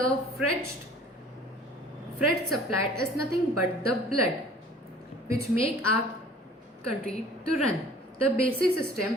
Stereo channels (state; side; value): normal; both; correlation 0.49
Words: freight supplied is nothing but the blood, which make our country to run. The basic system